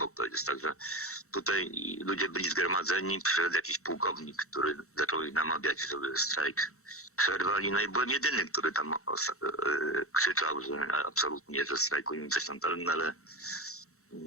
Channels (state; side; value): late; right; 0.64 ms